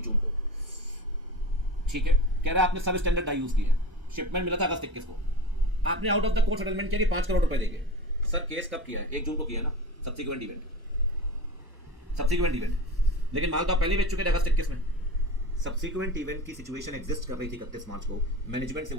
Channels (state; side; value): late; left; 1.1 ms